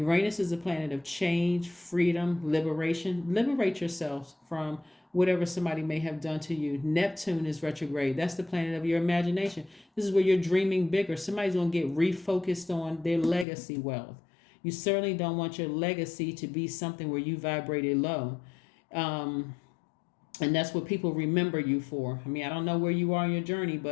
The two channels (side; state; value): right; drops out; at 13.5 s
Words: is a planet of change, freedom, liberation. Liberate yourselves from whatever somebody may have done to you. Neptune is retrograde. That's the planet of your imagination. This is where you're dreaming bigger. Somebody's going to get refocused on their legacy wealth. You certainly don't want your legacy to be something where you vibrated low. And that's what people remember you for. I mean, I don't know where you are in your journey,